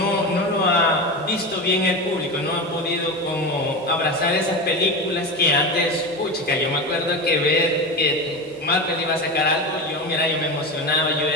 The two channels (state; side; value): normal; both; correlation 0.23